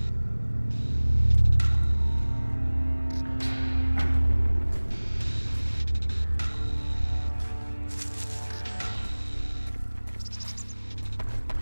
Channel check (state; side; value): inverted; both; correlation -1.00